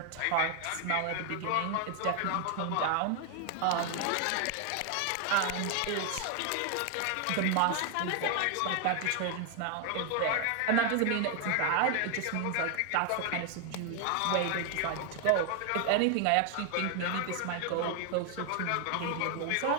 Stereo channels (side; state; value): both; different; correlation 0.01